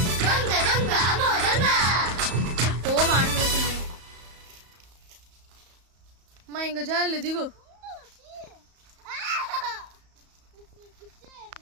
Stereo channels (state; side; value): late; left; 34 ms